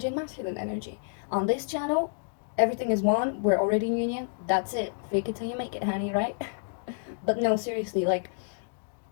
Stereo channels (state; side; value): silent; right; digital silence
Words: and masculine energy. On this channel, everything is one. We're already in union. That's it. Fake it till you make it, honey, right? But no, seriously, like,